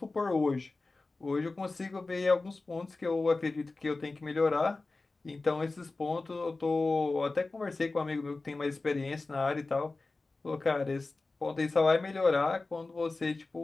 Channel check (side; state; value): right; quieter; 3.5 dB